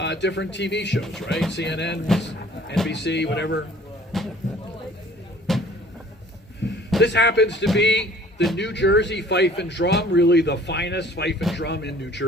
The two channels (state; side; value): normal; both; correlation 0.53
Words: TV shows, right? CNN, NBC, whatever. This happens to be the New Jersey Fife and Drum, really the finest fife and drum in New